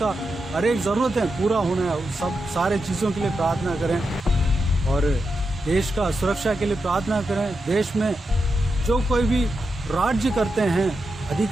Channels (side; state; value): both; normal; correlation 0.87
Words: हर एक ज़रूरतें पूरा होना है, सब सारे चीज़ों के लिए प्रार्थना करें। और देश का सुरक्षा के लिए प्रार्थना करें। देश में जो कोई भी राज्य करते हैं,